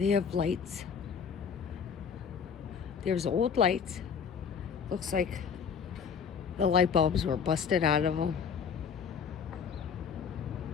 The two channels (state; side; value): quieter; right; 6.7 dB